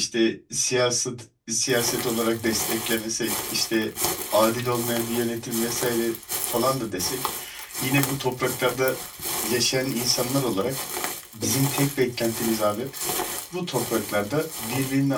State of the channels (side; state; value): both; identical; correlation 1.00